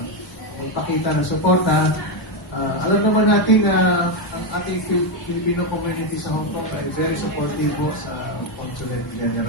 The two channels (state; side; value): normal; both; correlation 0.07